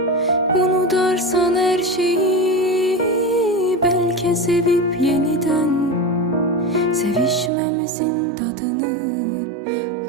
Unutarsan her şeyi, belki sevip yeniden sevişmemizin tadını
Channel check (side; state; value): left; drops out; at 7.5 s